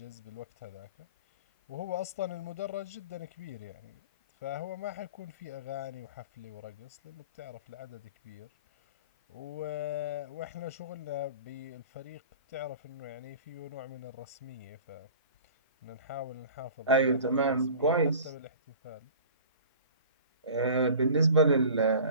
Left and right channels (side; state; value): both; inverted; correlation -0.42